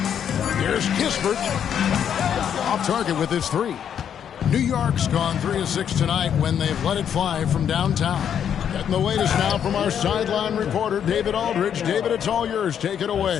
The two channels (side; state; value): right; quieter; 8.7 dB